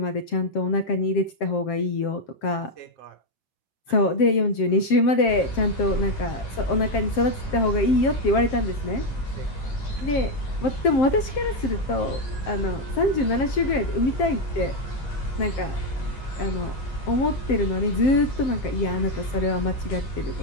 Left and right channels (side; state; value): right; late; 7.6 ms